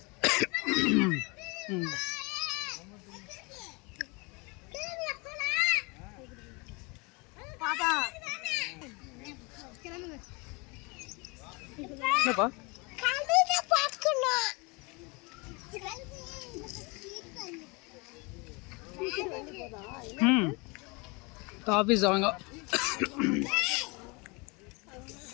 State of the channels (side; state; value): right; quieter; 28.4 dB